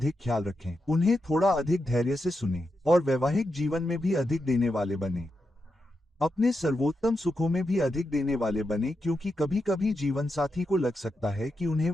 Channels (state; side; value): normal; both; correlation 0.86